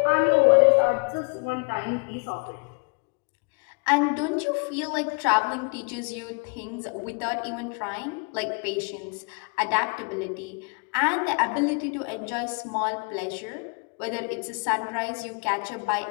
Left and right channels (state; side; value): quieter; right; 35.5 dB